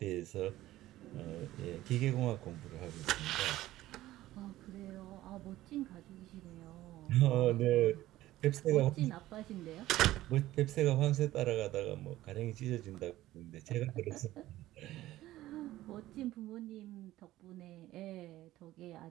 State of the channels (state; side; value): quieter; left; 15.5 dB